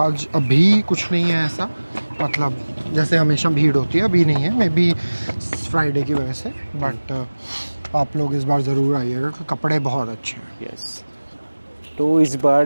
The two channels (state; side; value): inverted; both; correlation -1.00